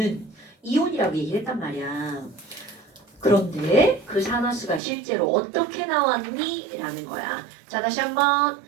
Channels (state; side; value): drops out; left; at 4.8 s